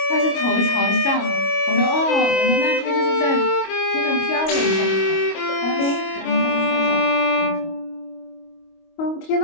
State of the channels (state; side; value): late; right; 25 ms